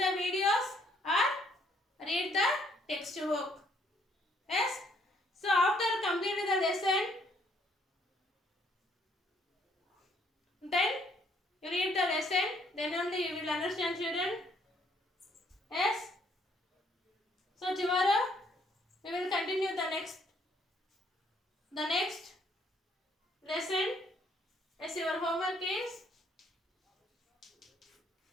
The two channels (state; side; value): normal; both; correlation 0.67